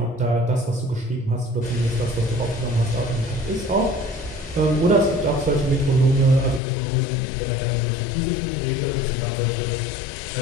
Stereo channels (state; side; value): drops out; right; at 6.6 s